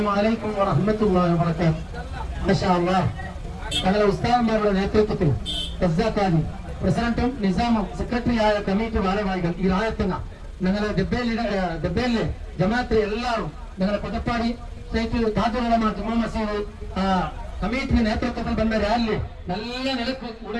അലൈക്കും വറഹ്മത്തുള്ളാഹി വബറകാതുഹു. മാഷാ അല്ലാഹ്, ഞങ്ങളുടെ ഉസ്താദന്മാരുടെ നേതൃത്വത്തിൽ ഖസാഖാനി പ്രസിഡന്റും നിസാമും സെക്രട്ടറിയായ കമ്മിറ്റി ഭാരവാഹികൾ ഈ രായത്തങ്ങ ഞങ്ങളുടെ ദബ്ബേലിലെ ജമാഅത്തിലെ എല്ലാവരും ഞങ്ങളുടെ കൊട്ടപ്പാടി സ്റ്റേറ്റ് താജുലമ ജുമാ മസീദ് കമ്മിറ്റി നേതൃത്വത്തിൽ വന്ന റാലി നല്ല നിലക്ക്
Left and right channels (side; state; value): both; identical; correlation 1.00